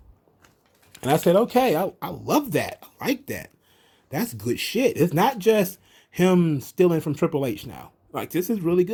And I said, okay, I love that. I like that. That's good shit. It's not just him stealing from Triple H now. Like, this is really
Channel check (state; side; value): identical; both; correlation 1.00